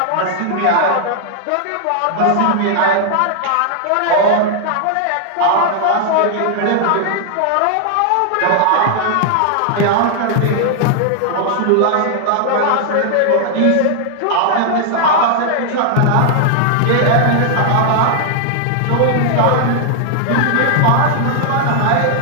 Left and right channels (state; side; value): different; both; correlation 0.00